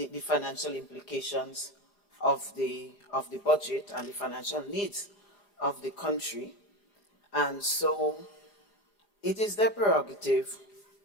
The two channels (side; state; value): right; late; 4.9 ms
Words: financial implications of the budget and the financial needs of the country. And so it is their prerogative